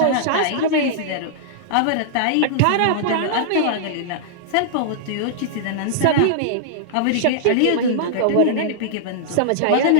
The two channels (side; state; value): both; different; correlation -0.01